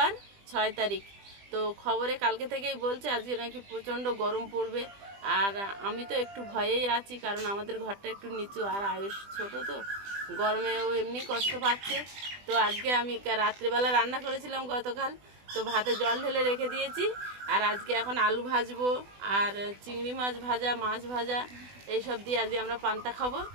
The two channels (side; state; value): left; late; 20 ms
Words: 6 তারিখ। তো খবরে কালকে থেকেই বলছে আজকে নাকি প্রচণ্ড গরম পড়বে। আর আমি তো একটু ভয়েই আছি, কারণ আমাদের ঘরটা একটু নিচু, আর আয়ুষ ছোট, তো গরমে ও এমনি কষ্ট পাচ্ছে। তো আজকে আমি রাত্রিবেলা রান্না করেছিলাম গতকাল, তো ভাতে জল ঢেলে রেখে দিয়েছি। আর আজকে এখন আলু ভাজবো, আর চিংড়ি মাছ ভাজা, মাছ ভাজা, এইসব দিয়ে আজকে আমরা পান্তা খাবো।